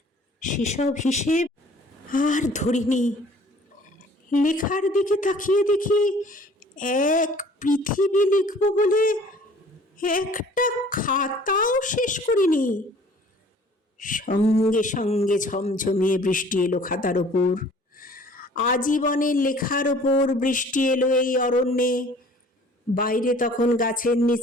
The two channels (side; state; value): both; normal; correlation 0.52